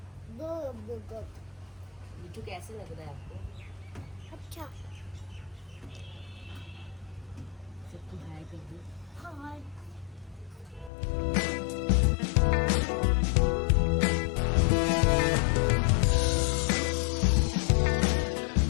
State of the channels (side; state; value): right; drops out; at 10.9 s